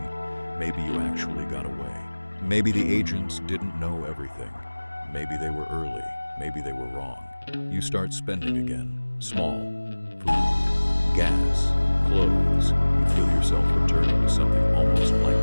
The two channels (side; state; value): both; inverted; correlation -1.00